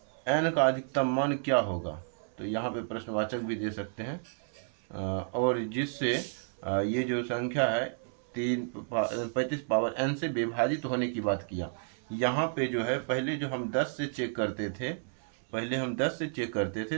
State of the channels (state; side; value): silent; left; 57 dB below the other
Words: n का अधिकतम मान क्या होगा। तो यहाँ पे प्रश्नवाचक भी दे सकते हैं, और जिससे ये जो संख्या है 35 पावर n से विभाजित होने की बात किया। यहाँ पे जो है पहले जो हम 10 से चेक करते थे,